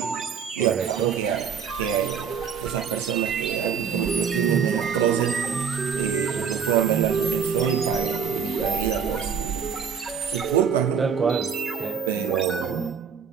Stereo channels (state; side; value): quieter; left; 7.0 dB